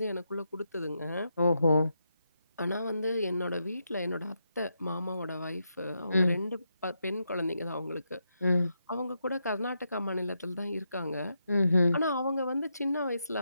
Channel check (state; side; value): inverted; both; correlation -0.83